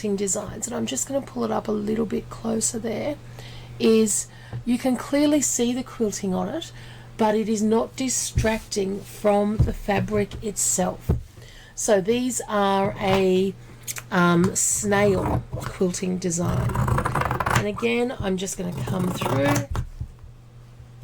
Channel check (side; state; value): both; identical; correlation 1.00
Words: designs, and I'm just going to pull it up a little bit closer there, is you can clearly see the quilting on it, but it is not distracting from the fabric itself. So these are a snail quilting design. And again, I'm just going to come through